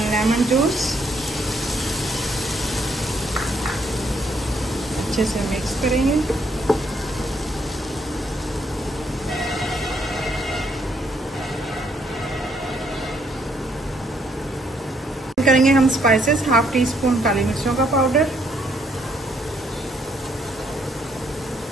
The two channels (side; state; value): both; normal; correlation 0.71